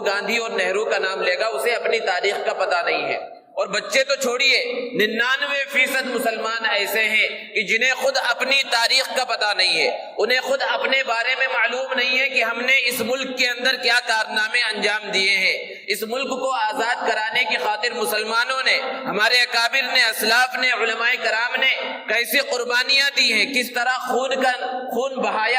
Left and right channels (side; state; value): both; identical; correlation 1.00